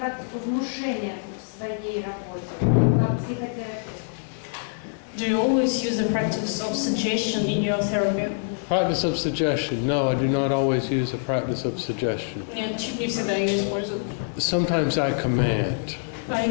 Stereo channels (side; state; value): right; silent; digital silence